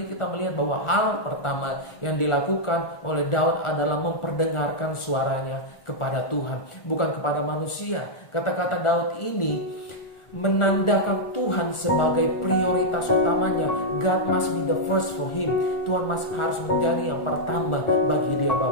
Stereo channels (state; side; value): late; right; 1.4 ms